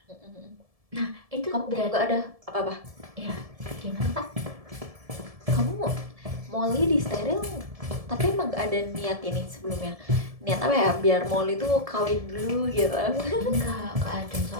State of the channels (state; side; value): late; left; 1.7 ms